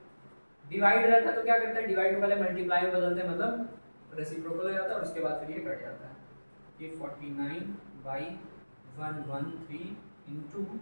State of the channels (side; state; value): both; inverted; correlation -1.00